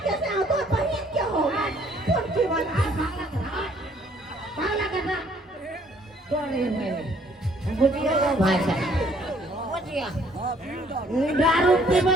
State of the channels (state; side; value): normal; both; correlation 0.62